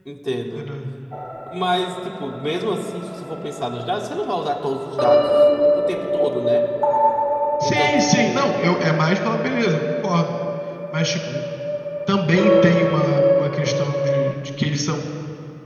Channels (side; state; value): both; identical; correlation 1.00